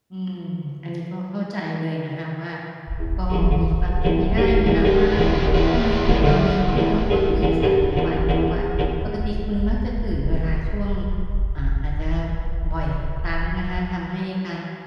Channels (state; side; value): identical; both; correlation 1.00